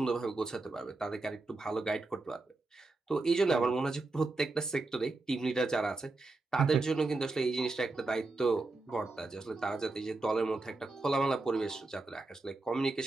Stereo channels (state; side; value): quieter; left; 3.3 dB